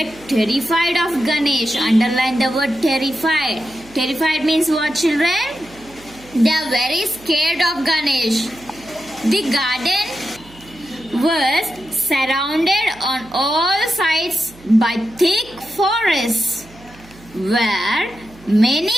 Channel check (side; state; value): right; noise; hum, 23 dB below the sound